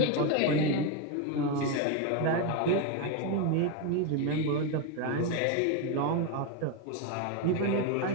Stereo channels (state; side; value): different; both; correlation 0.02